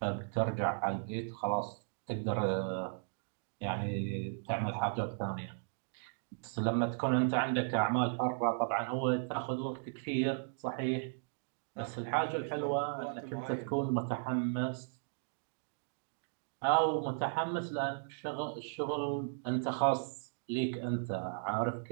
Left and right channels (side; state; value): left; silent; digital silence